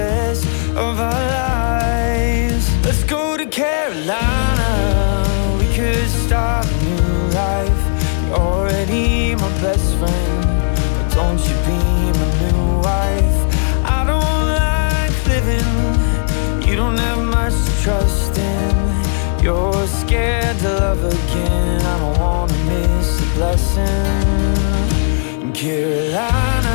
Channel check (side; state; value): right; silent; 58 dB below the other